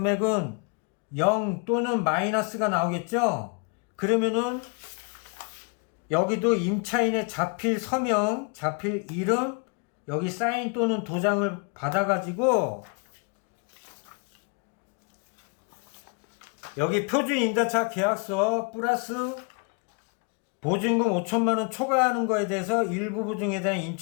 0 또는 마이너스가 나오겠죠. 그러면은 여기도 임차인의 자필 서명, 자필 이름, 여기 사인 또는 도장을 받아가지고 여기 표준 임대차 계약서 플러스 보증금 5천만원 초과하는 거에 대해서 일부 보증에 대한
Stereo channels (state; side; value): quieter; right; 35.8 dB